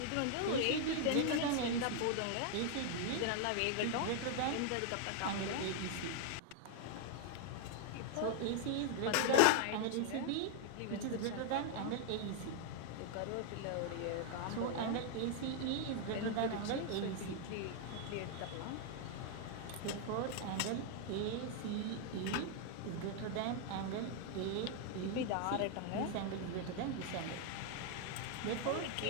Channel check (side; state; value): both; different; correlation 0.00